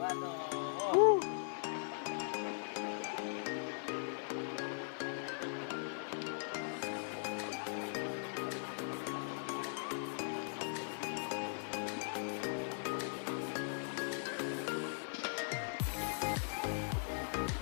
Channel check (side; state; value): right; silent; digital silence